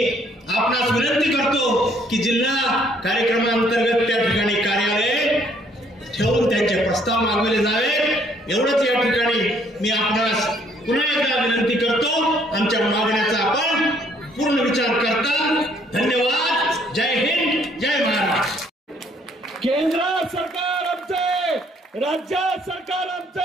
आपणास विनंती करतो की जिल्हा कार्यक्रमांतर्गत त्या ठिकाणी कार्यालय ठेवून त्यांचे प्रस्ताव मागवले जावे एवढंच या ठिकाणी मी आपणास पुन्हा एकदा विनंती करतो. आमच्या मागण्याचा आपण पूर्ण विचार करता. धन्यवाद. जय हिंद, जय महाराष्ट्र. केंद्र सरकार आमचे, राज्य सरकार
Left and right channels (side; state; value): both; normal; correlation 0.64